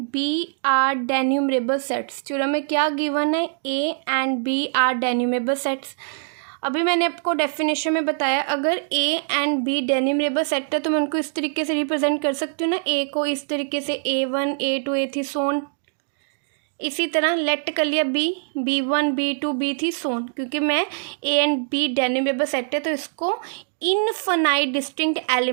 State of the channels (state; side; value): silent; left; digital silence